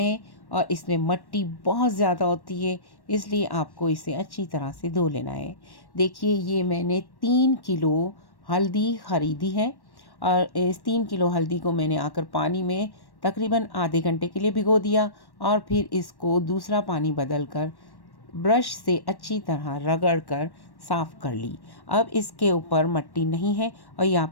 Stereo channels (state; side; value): late; right; 1.1 ms